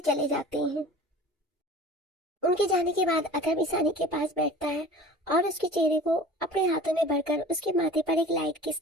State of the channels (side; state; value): both; normal; correlation 0.42